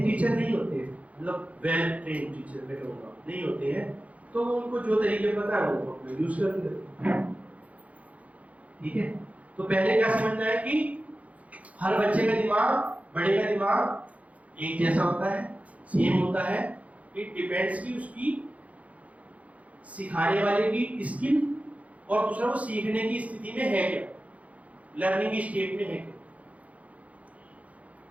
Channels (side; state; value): left; late; 0.067 ms